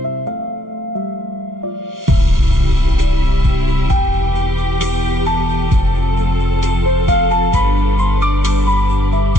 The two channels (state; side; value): late; left; 0.89 ms